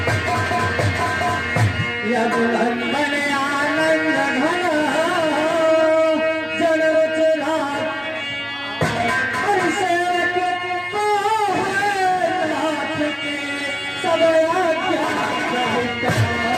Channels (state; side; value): identical; both; correlation 1.00